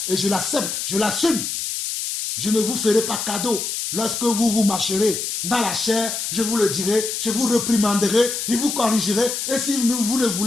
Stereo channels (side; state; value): left; noise; hiss, 3 dB below the sound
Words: Et je l'accepte, je l'assume. Je ne vous ferai pas cadeau. Lorsque vous marcherez dans la chair, je vous le dirai, je vous réprimanderai, je vous corrigerai. Et si vous ne